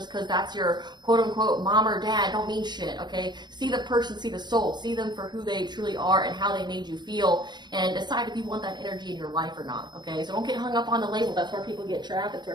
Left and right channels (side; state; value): left; late; 0.21 ms